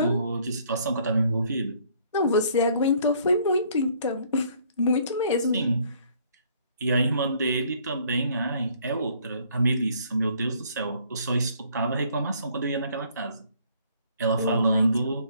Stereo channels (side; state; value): both; inverted; correlation -0.62